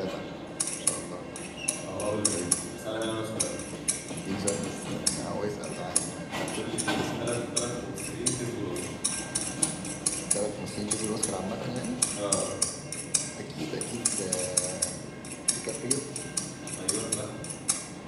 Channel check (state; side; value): identical; both; correlation 1.00